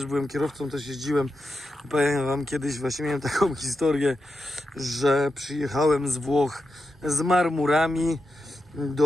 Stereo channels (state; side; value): normal; both; correlation 0.88